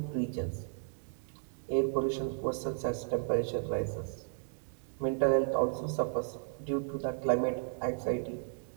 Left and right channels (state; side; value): silent; left; digital silence